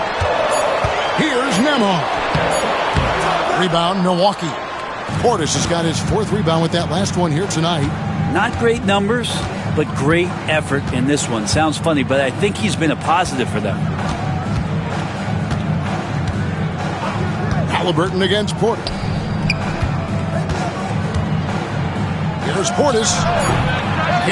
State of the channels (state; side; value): identical; both; correlation 1.00